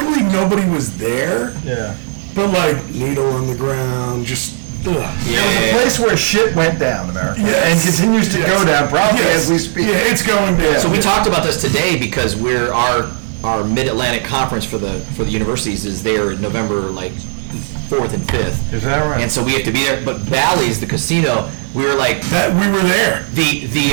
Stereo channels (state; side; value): silent; left; 58 dB below the other